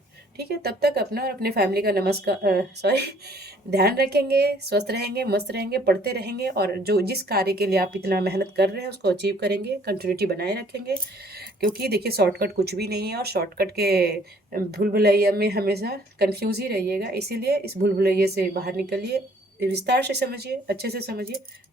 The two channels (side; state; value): both; normal; correlation 0.59